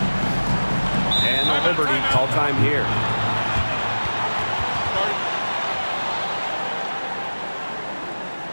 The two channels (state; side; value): inverted; both; correlation -1.00